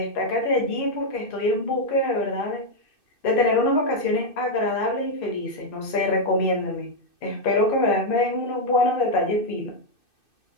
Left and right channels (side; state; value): right; late; 2.6 ms